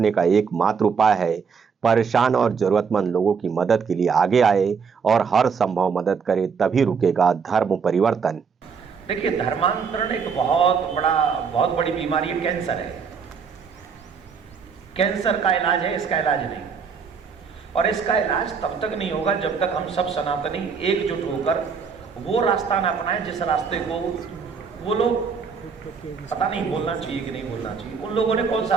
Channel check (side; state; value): left; quieter; 5.9 dB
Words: का एकमात्र उपाय है परेशान और जरूरतमंद लोगों की मदद के लिए आगे आए और हर संभव मदद करे, तभी रुकेगा धर्म परिवर्तन। देखिए, धर्मांतरण एक बहुत बड़ी बीमारी है, कैंसर है। कैंसर का इलाज है, इसका इलाज नहीं। और इसका इलाज तब तक नहीं होगा जब तक हम सब सनातनी एकजुट होकर वो रास्ता ना अपनाएं जिस रास्ते को वो लोग, पता नहीं बोलना चाहिए कि नहीं बोलना चाहिए, उन लोगों ने कौन सा